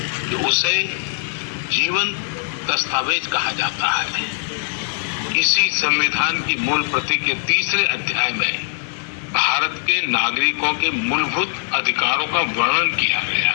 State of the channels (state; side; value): silent; right; digital silence